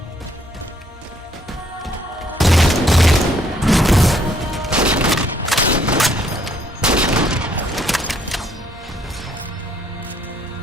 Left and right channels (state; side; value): normal; both; correlation 0.67